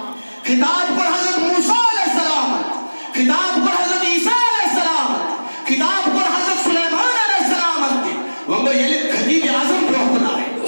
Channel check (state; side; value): inverted; both; correlation -1.00